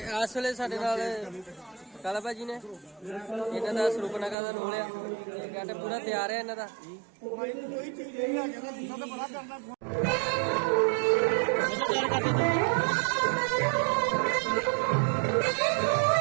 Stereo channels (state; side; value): drops out; left; at 4.4 s